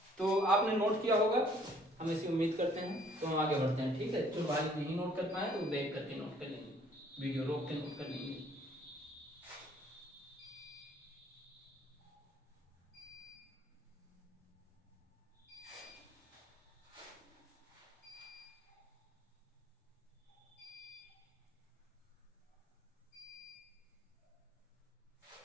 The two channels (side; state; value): both; normal; correlation 0.60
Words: तो आपने नोट किया होगा, हम ऐसी उम्मीद करते हैं। तो हम आगे बढ़ते हैं। ठीक है, जो भाई नहीं नोट कर पाए तो बैक करके नोट कर लेंगे, वीडियो रोक के नोट कर लेंगे।